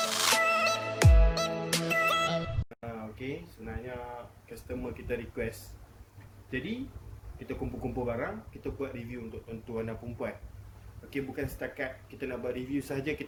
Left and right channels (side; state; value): both; identical; correlation 1.00